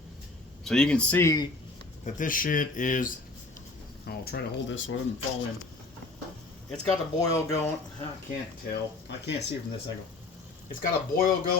So you can see that this shit is, I'll try to hold this so it doesn't fall in. It's got the boil going. I can't tell. I can't see from this angle. It's got a boil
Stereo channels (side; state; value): right; quieter; 3.4 dB